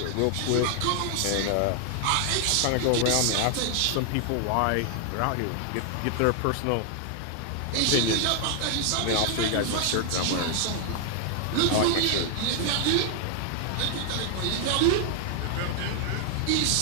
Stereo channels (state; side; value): different; both; correlation 0.00